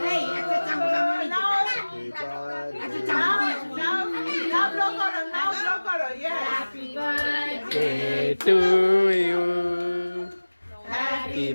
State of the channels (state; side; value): inverted; both; correlation -1.00